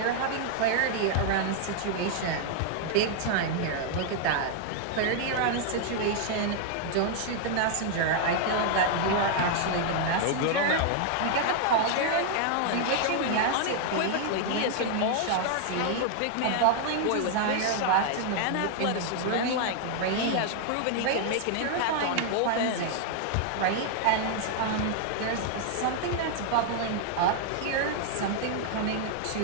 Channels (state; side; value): different; both; correlation 0.00